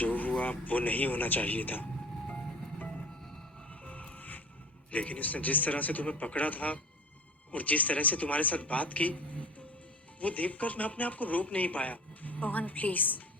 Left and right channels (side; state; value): both; normal; correlation 0.40